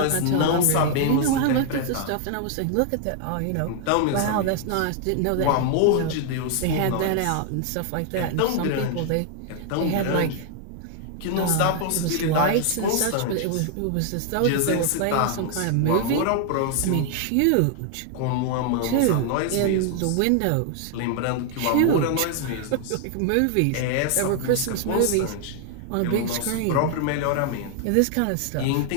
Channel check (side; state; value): both; different; correlation 0.00